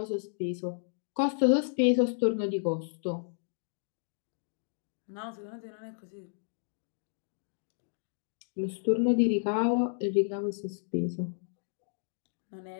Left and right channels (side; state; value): right; silent; digital silence